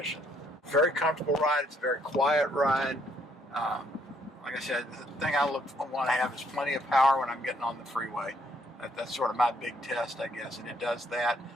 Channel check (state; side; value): normal; both; correlation 0.69